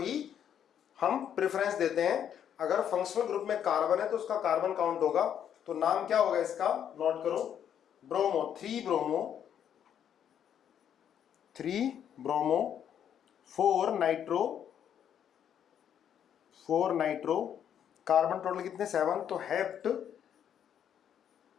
हम प्रेफरेंस देते हैं। अगर फंक्शनल ग्रुप में कार्बन है तो उसका कार्बन काउंट होगा, तो नाम क्या होगा इसका? नोट करो, bromo. 3 bromo, 3 bromo, 4 nitro, 4 nitro. Carbon total कितने? 7। तो हेप्ट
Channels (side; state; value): right; quieter; 9.2 dB